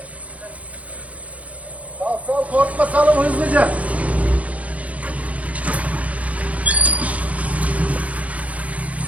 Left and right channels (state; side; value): late; left; 0.067 ms